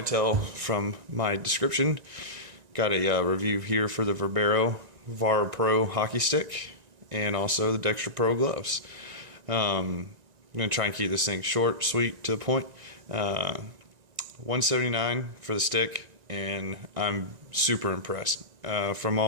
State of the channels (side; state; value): left; late; 1.9 ms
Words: tell from my description, got a review here for the Verbero hockey stick and also the Dexter Pro gloves. I'm going to try and keep this thing short, sweet, to the point. $179 for the stick, and I'm super impressed. From